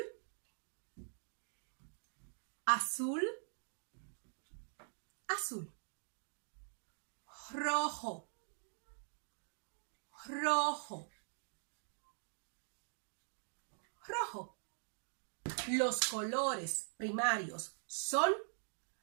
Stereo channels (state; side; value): silent; left; digital silence